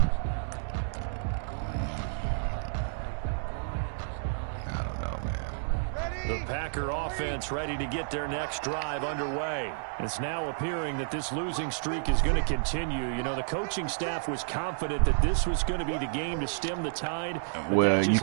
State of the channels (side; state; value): left; silent; 58 dB below the other